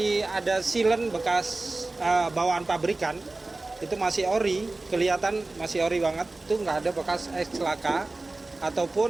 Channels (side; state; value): left; quieter; 3.2 dB